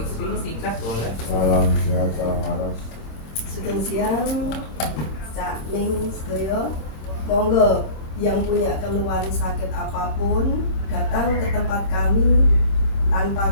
singkat boleh. Salam sehat, salam waras. Sugeng siang, Cak Ning sedaya. Monggo yang punya keluhan sakit apapun datang ke tempat kami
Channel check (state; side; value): late; right; 27 ms